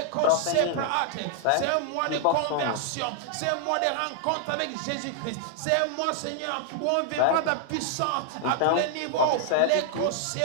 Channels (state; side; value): different; both; correlation 0.00